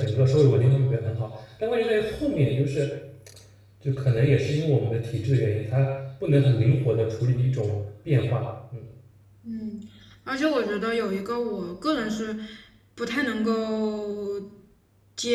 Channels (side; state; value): both; identical; correlation 1.00